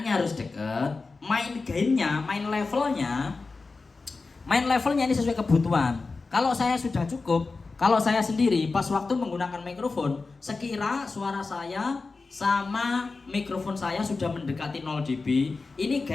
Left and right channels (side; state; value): right; quieter; 4.0 dB